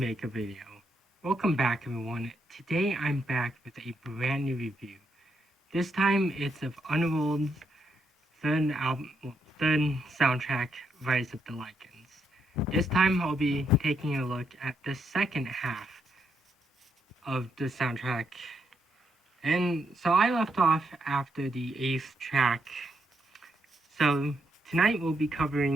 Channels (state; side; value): normal; both; correlation 0.78